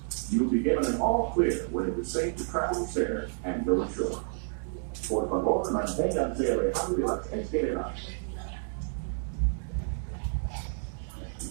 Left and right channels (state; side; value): silent; left; 58 dB below the other